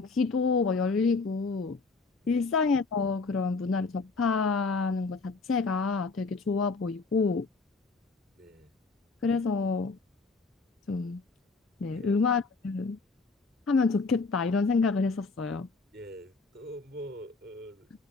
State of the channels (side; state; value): right; quieter; 4.1 dB